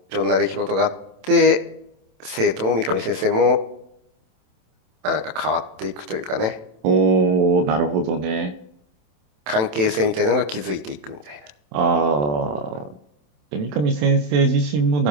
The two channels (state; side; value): late; left; 27 ms